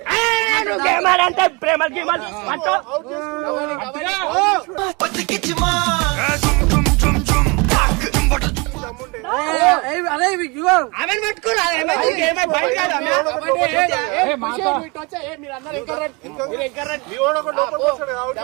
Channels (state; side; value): quieter; left; 28.5 dB